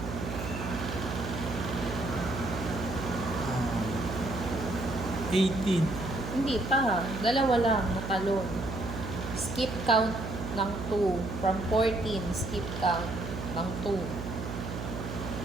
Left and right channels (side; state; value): right; noise; hum, 7 dB below the sound